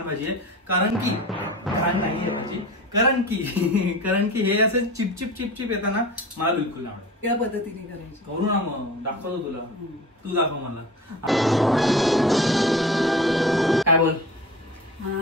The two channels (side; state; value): both; normal; correlation 0.36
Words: भाजी आहे. कारण की घाण नाहीये भाजी, कारण की हे असं चिपचिप येताना मला बिलकुल नाही आवडत. या पद्धतीने करायची. करू ना मग, दाखवतो तुला, तू दाखव मला. काय बोल.